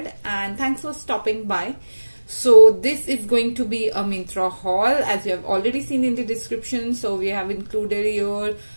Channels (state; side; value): inverted; both; correlation -1.00